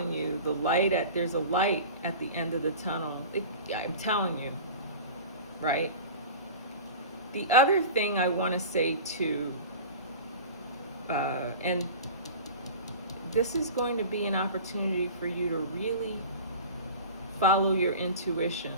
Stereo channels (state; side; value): inverted; both; correlation -0.36